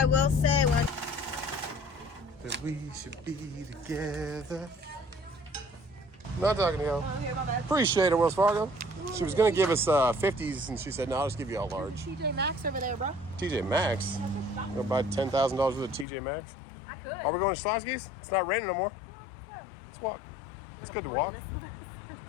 will say when. That we should be together. Not talking to you. Oh, here, my bad. Appreciate it, Wells Fargo. She was gonna give us 50s, and she said, "No, I'll just give you all large." TJ Maxx over there, bro. TJ Maxx. Go buy $10,000 worth of TJ Maxx. I could. Are we going to Schlotzsky's? It's not raining no more. Let's walk. It's good to walk.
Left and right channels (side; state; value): right; drops out; at 16.1 s